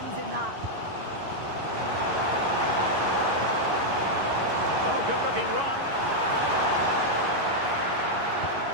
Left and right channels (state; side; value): late; left; 11 ms